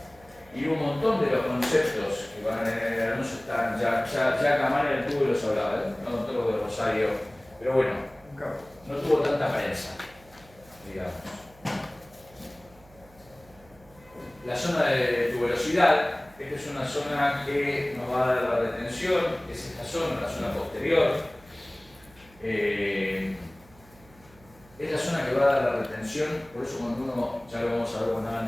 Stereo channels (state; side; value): noise; right; hum, 26 dB below the sound